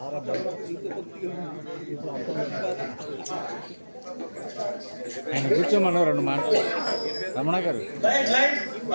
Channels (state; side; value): inverted; both; correlation -1.00